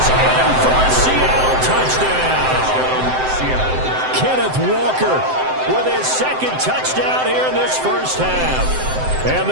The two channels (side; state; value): left; late; 7.8 ms